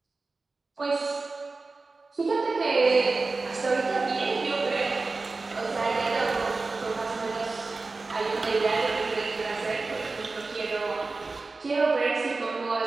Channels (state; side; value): quieter; left; 3.7 dB